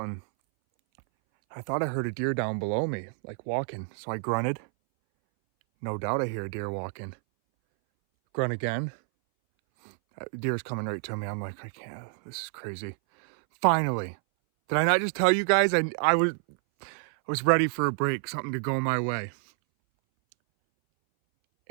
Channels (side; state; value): left; silent; 59 dB below the other